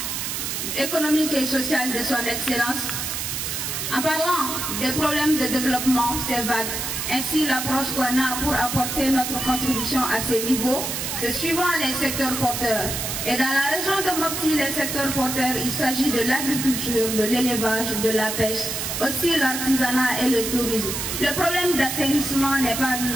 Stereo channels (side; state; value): right; noise; hiss, 3 dB below the sound